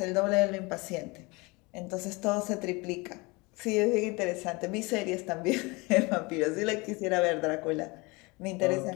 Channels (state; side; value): quieter; right; 26.0 dB